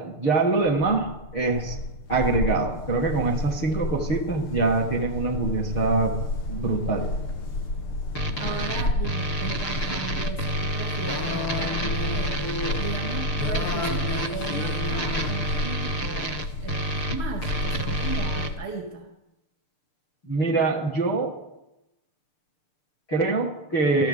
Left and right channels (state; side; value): late; right; 6.7 ms